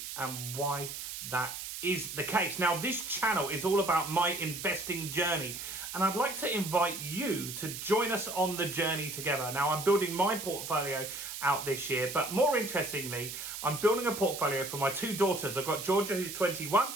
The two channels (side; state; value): right; noise; hiss, 7 dB below the sound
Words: and why that is the case. Now this channel is all about my investing journey and I'd like to invite you to join us on the journey together. Now I'm building my portfolio out this year, but more interestingly, I'm building a portfolio for my two daughters. I've got Georgia, who's 21.